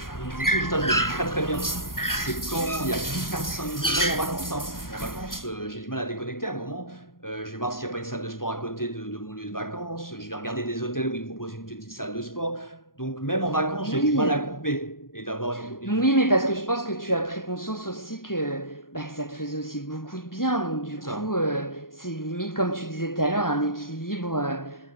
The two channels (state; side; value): late; right; 0.91 ms